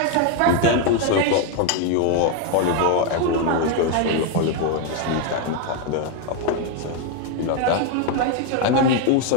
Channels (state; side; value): different; both; correlation 0.01